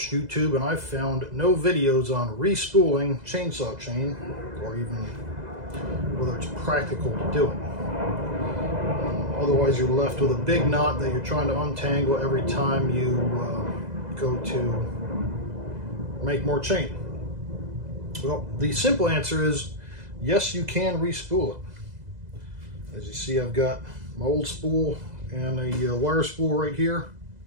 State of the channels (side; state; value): left; late; 2.0 ms